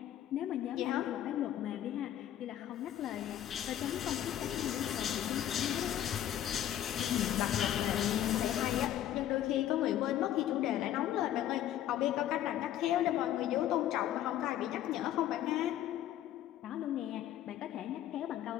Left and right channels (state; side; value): quieter; right; 11.8 dB